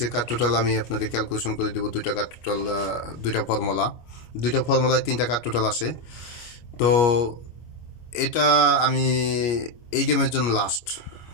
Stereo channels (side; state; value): right; late; 25 ms